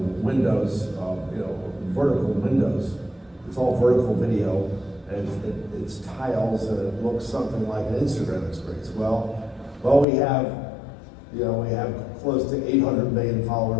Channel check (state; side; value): drops out; right; at 10.1 s